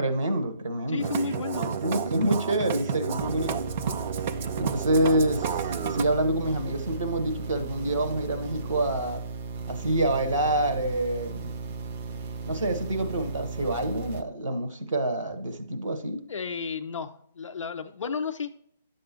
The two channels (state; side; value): inverted; both; correlation -0.62